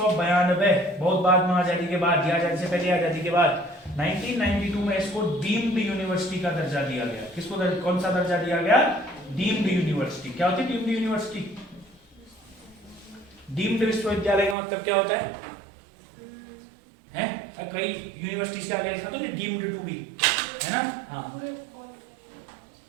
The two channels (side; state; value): left; drops out; at 14.6 s